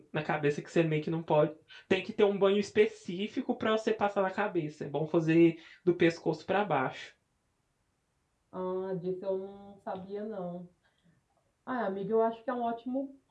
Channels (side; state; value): both; identical; correlation 1.00